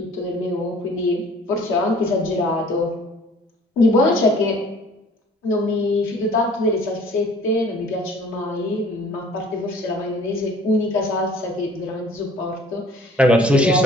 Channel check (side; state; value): both; normal; correlation 0.52